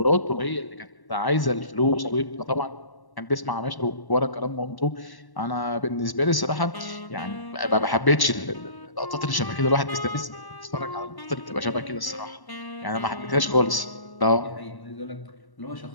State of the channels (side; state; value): right; late; 1.1 ms